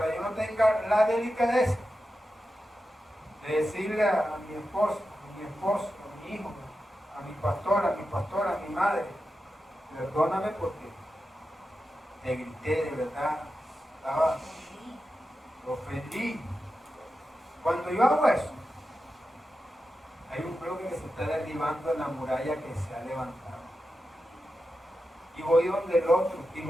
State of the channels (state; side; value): normal; both; correlation 0.90